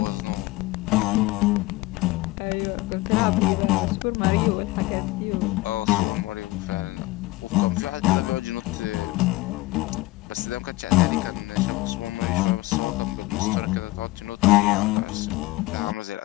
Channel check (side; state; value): right; quieter; 20.1 dB